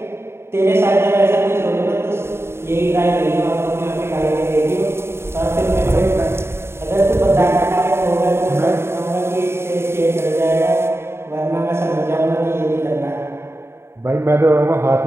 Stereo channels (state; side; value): late; left; 0.12 ms